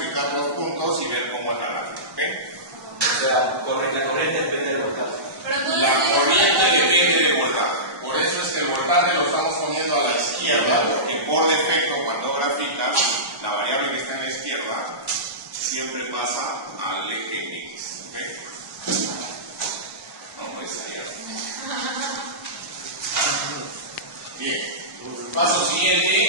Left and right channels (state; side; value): late; left; 1.1 ms